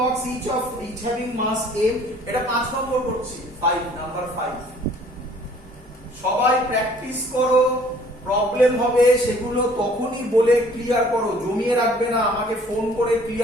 each having mass m এটা 5 নম্বর করছি 5 নাম্বার 5 সবাই প্র্যাকটিস করো প্রবলেম হবে সেগুলো তখনই বলে ক্লিয়ার করো জমিয়ে রাখবে না আমাকে ফোন করে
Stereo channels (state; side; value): normal; both; correlation 0.55